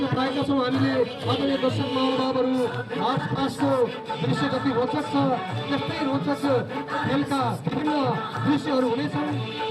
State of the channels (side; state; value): both; identical; correlation 1.00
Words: पाएका छौँ हामीले। आदरणीय दर्शक महानुभावहरू, मार्च पासको दृश्य जति रोचक छ त्यस्तै रोचक खेलका विभिन्न दृश्यहरू हुनेछन्।